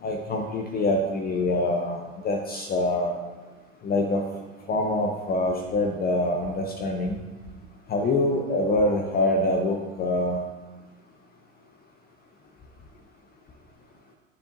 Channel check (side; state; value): both; normal; correlation 0.11